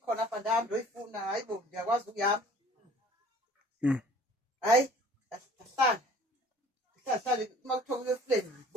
apha ndahamba ndoyifuna hayi bo ndiyakwazi ukuyama hayi ndahlala uma kuthiwa kuyo efleni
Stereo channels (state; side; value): normal; both; correlation 0.51